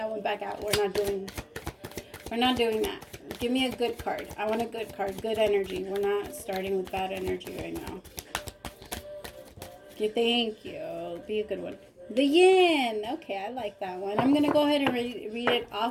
one back out. We're not doing that. Give me a good card. I want a good card. Good energy. We're not starting with bad energy right now. Okay, thank you. Be a good one. The yin. Okay, I like that one. I'm going to go ahead and read it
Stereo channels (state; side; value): identical; both; correlation 1.00